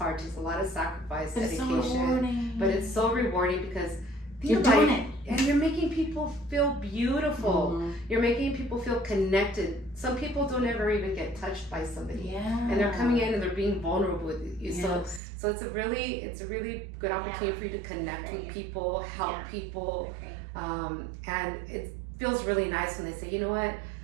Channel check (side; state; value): left; drops out; at 15.2 s